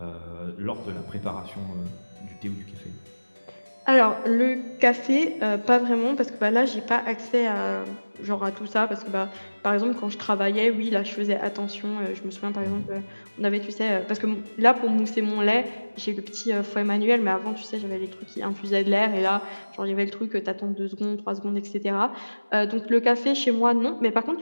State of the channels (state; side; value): inverted; both; correlation -1.00